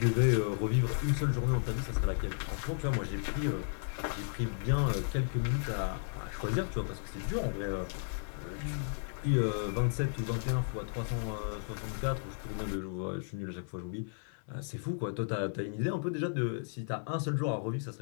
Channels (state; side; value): silent; right; 55 dB below the other